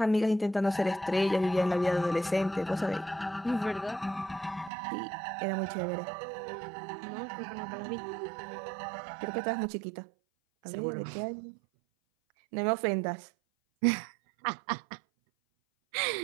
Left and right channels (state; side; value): drops out; left; at 4.7 s